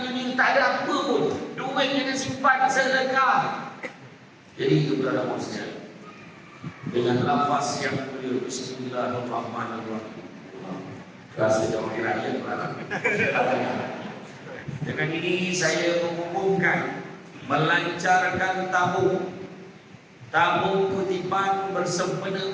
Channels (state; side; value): identical; both; correlation 1.00